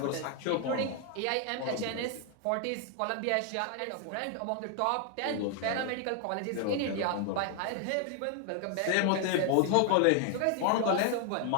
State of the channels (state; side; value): different; both; correlation 0.00